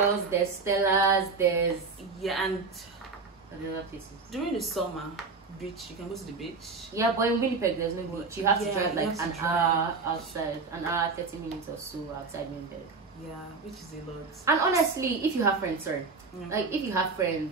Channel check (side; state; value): left; quieter; 4.3 dB